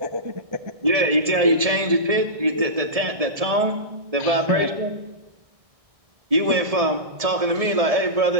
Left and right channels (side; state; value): left; late; 1.7 ms